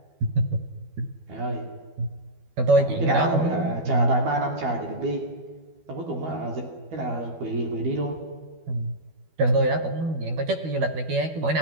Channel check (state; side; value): late; left; 12 ms